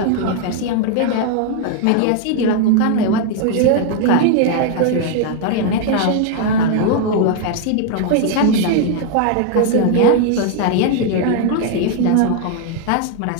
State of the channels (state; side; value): different; both; correlation 0.00